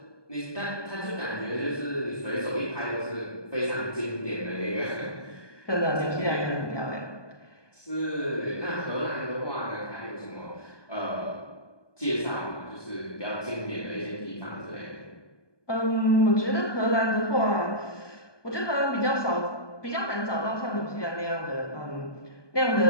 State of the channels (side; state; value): right; late; 1.2 ms